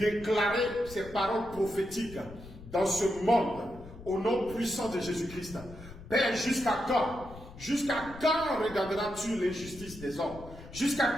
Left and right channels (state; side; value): noise; left; rumble, 16 dB below the sound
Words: ces paroles prophétiques dans ce monde, au nom puissant de Jésus-Christ. Père, jusqu'à quand regarderas-tu l'injustice des hommes? Jusqu'à